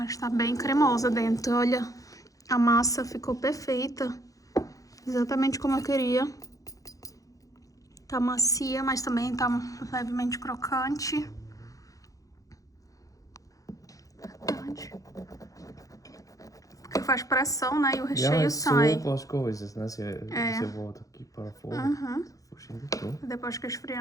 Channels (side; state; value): right; late; 0.17 ms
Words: tá bem cremosa dentro. Olha, a massa ficou perfeita. Exatamente como eu queria. Tá macia, mas também tá levemente crocante. Verdade. Porque faz pressão, né? E o recheio sai. As coisas, né? Se volta aqui para fora. Depois que